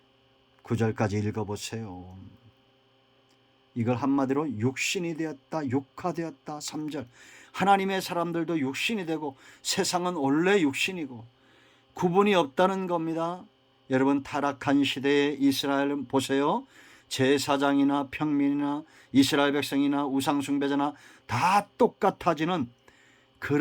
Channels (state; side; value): identical; both; correlation 1.00